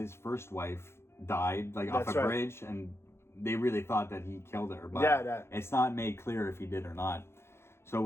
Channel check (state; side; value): late; right; 0.12 ms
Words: first wife died off a bridge, and they really thought that he killed her, but it's not made clear if he did or not.